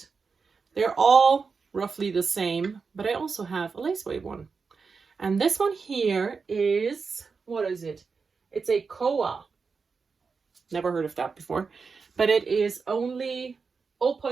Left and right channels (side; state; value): left; quieter; 5.0 dB